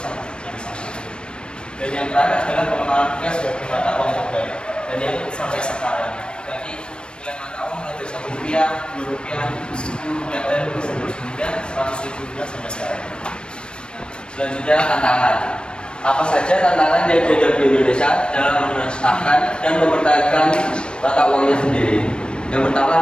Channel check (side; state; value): right; late; 0.054 ms